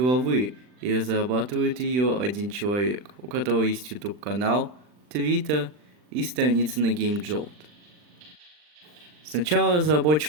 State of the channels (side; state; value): left; late; 40 ms